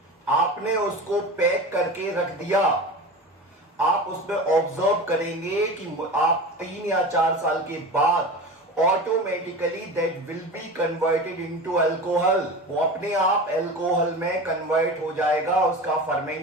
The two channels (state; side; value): normal; both; correlation 0.31